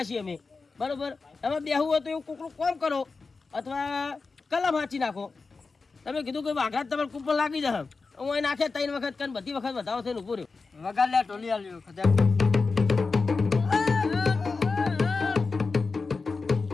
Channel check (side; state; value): right; quieter; 4.3 dB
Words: અમે બરોબર. તમે બેહવું હોય તો એવું કોકનું કોમ કરો અથવા કલમ હાંચી નાખો. તમે કીધું કે વાઘા તમારે કૂપન લાગી જશે, હું અહીં નાખે 3 વખત કરીને બધી વખત વધારો થઈને ઉભો રહ્યો. વગાડ લે ટોલી આલ્યો ખજા.